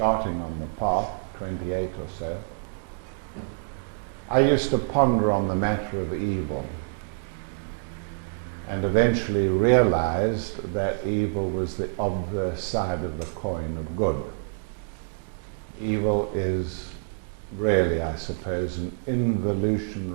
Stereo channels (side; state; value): left; silent; digital silence